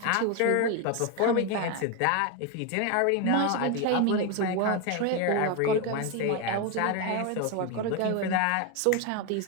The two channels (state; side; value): different; both; correlation 0.02